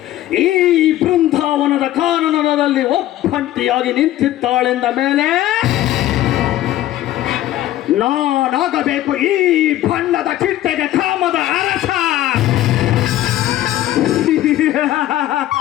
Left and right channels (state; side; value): quieter; right; 14.1 dB